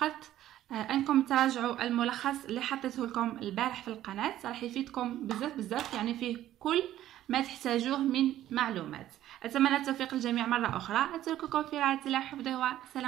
انكم تراجعوا الملخص اللي حطيته لكم البارح في القناة، راح يفيدكم بزاف يعني فيه كل ما تحتاجوه من معلومات. اتمنى التوفيق للجميع مرة اخرى. اترككم في رعاية الله وحفظه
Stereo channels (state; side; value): quieter; left; 13.0 dB